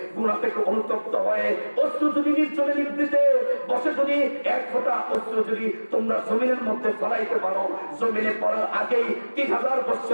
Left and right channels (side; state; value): both; inverted; correlation -1.00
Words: গুনাহ থেকে অনুতপ্ত হয়ে অশ্রু যদি নির্জনে নিবৃতে বসে যদি এক ফোঁটা অশ্রু যদি তোমরা জমিনের মধ্যে ফলাইতে পারো, জমিনে পড়ার আগেই 3000